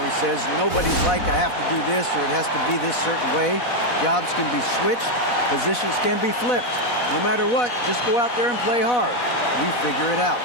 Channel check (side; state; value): right; late; 4.1 ms